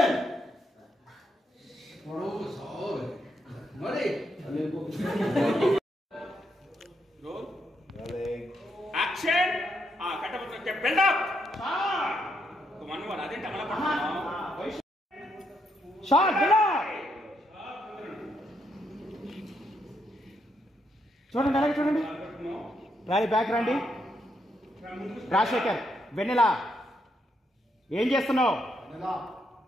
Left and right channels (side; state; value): both; normal; correlation 0.78